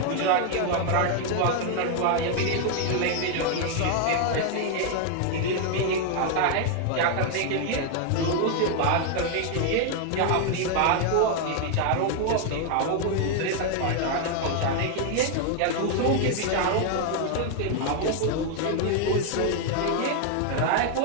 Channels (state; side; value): different; both; correlation 0.00